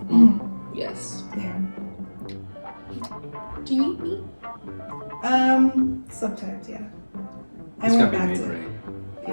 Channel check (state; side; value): inverted; both; correlation -1.00